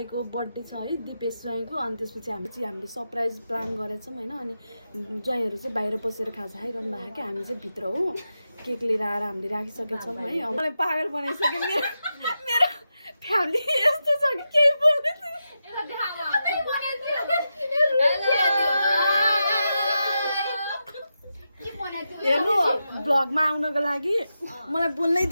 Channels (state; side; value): inverted; both; correlation -0.89